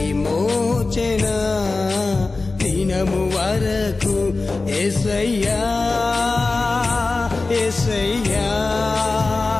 దినము వరకు యేసయ్యా యేసయ్యా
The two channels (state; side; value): quieter; right; 3.6 dB